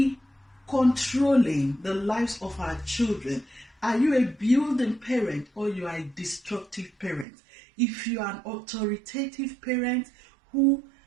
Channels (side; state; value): left; drops out; at 7.2 s